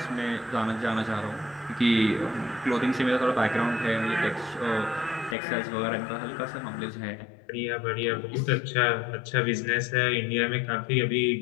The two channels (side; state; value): right; drops out; at 5.4 s